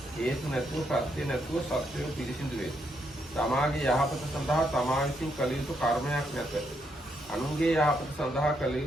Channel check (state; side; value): normal; both; correlation 0.77